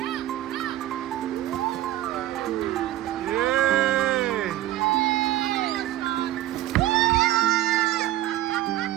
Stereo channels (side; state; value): left; quieter; 14.2 dB